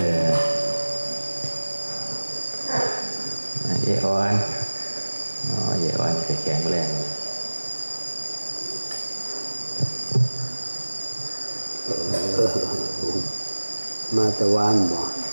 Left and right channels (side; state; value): both; inverted; correlation -1.00